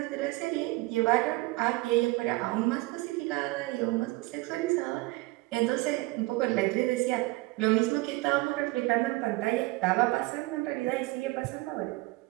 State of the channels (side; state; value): left; quieter; 21.8 dB